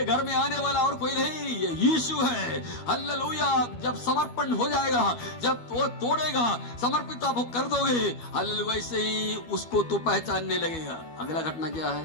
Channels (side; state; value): right; late; 12 ms